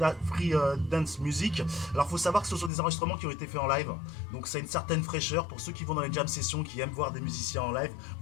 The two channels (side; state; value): right; drops out; at 2.7 s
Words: Dance Music. Alors il faut savoir que ce sont des enregistrements qui ont été faits en live, donc ça a une certaine fraîcheur. Pour ceux qui vont dans les jam sessions, qui aiment voir des musiciens en live,